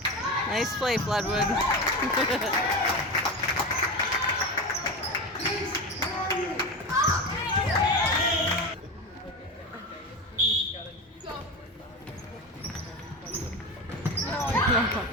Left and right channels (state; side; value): normal; both; correlation 0.23